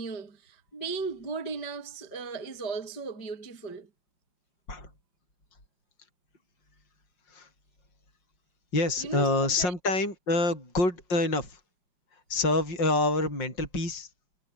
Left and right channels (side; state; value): right; late; 5.5 ms